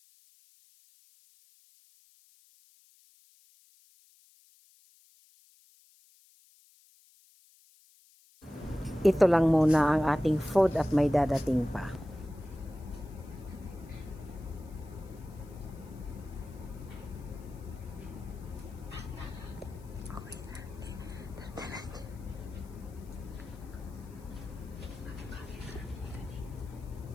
Ito lang muna ang ating food at may dadating pa.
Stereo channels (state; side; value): noise; left; hiss, 28 dB below the sound